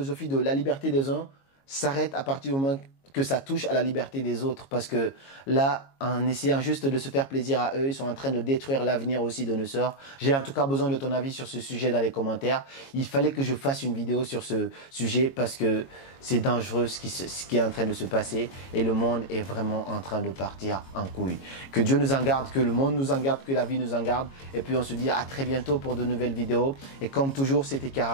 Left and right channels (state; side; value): late; right; 22 ms